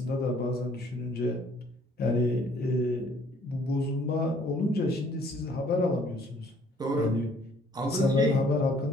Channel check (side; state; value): both; normal; correlation 0.60